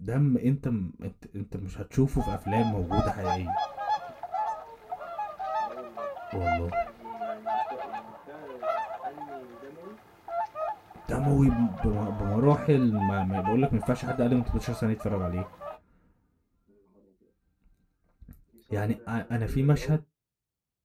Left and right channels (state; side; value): identical; both; correlation 1.00